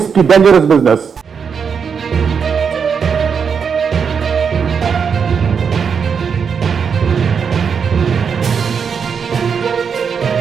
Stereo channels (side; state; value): left; quieter; 6.4 dB